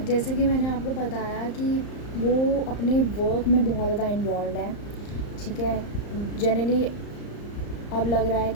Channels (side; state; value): right; late; 34 ms